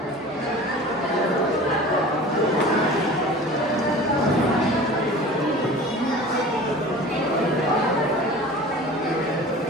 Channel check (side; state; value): both; normal; correlation 0.40